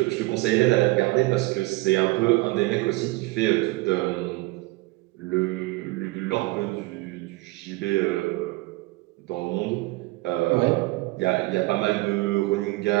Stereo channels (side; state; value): left; quieter; 22.0 dB